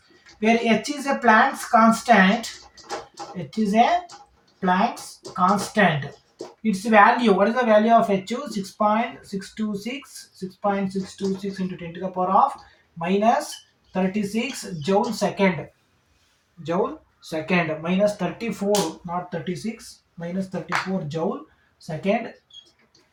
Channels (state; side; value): identical; both; correlation 1.00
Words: where h is a Planck's constant. H is a Planck's constant. Its value, what is the value of H? 6.626, 6.626 into 10 to the power of minus 36 joule second. Joule second minus 34, not 36, minus 34 joule second.